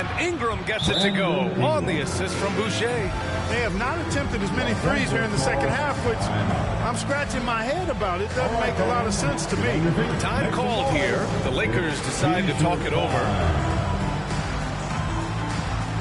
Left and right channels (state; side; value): identical; both; correlation 1.00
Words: Ingram gets it to go on the assist from Boucher. They have not attempted as many threes here in the second half, which I'm scratching my head about. It doesn't make a lot of sense to me. Time called here. The Lakers decide to talk it over.